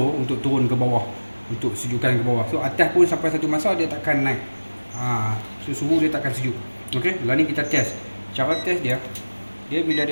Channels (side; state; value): both; inverted; correlation -1.00